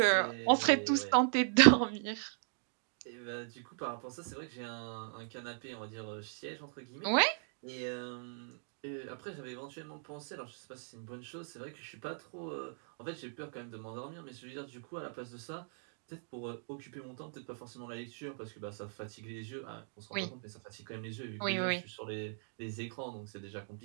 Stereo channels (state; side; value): silent; left; digital silence